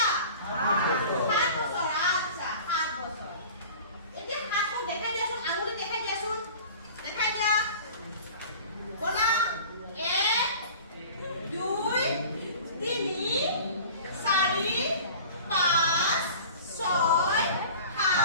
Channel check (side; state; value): both; inverted; correlation -0.41